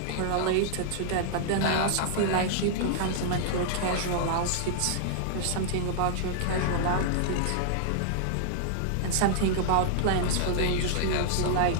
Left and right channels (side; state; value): both; different; correlation -0.01